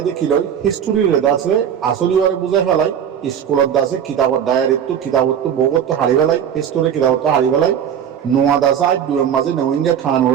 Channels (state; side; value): quieter; left; 8.8 dB